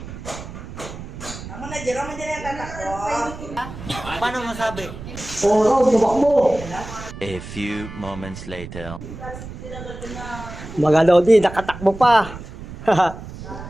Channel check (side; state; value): right; noise; rumble, 12 dB below the sound